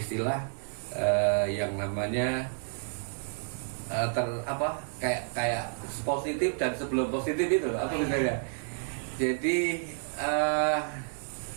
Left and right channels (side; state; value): left; silent; 58 dB below the other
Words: yang namanya kayak positif dan sebelum positif itu apa misalnya. Jadi